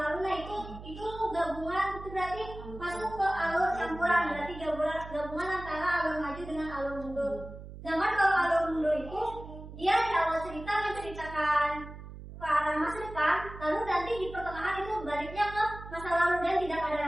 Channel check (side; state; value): right; noise; hum, 13 dB below the sound